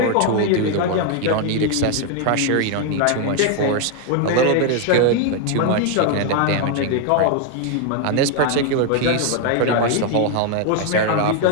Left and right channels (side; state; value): both; different; correlation 0.01